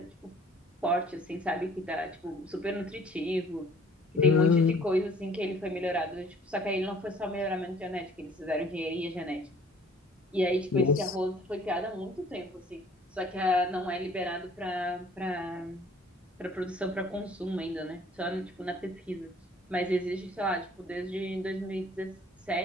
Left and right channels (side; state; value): both; normal; correlation 0.55